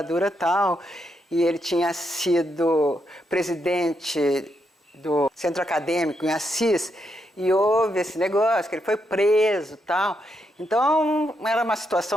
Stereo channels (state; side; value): normal; both; correlation 0.81